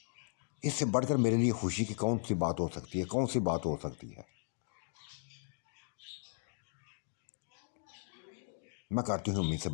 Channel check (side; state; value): right; silent; digital silence